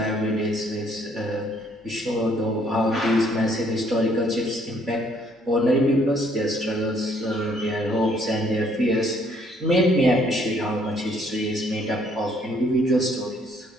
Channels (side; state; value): both; normal; correlation 0.65